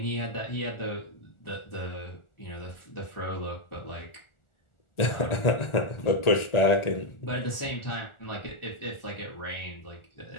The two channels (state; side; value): late; right; 1.4 ms